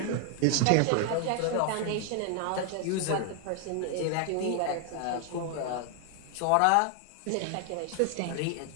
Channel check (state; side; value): different; both; correlation 0.00